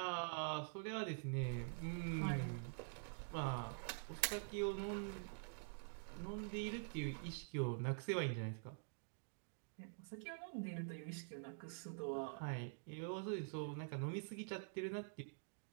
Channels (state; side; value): silent; left; digital silence